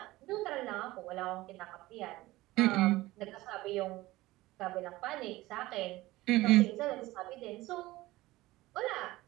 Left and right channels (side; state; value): left; quieter; 18.4 dB